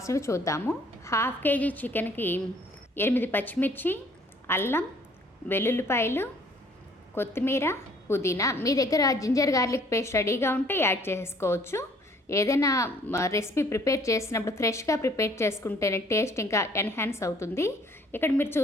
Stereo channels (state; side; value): normal; both; correlation 0.59